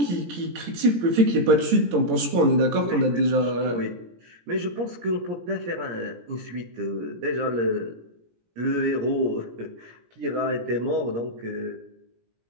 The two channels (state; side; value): late; left; 17 ms